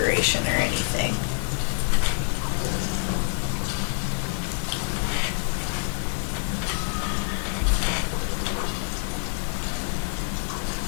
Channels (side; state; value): right; silent; digital silence